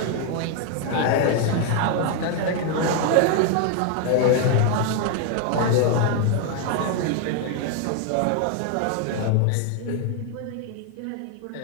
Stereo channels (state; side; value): different; both; correlation 0.00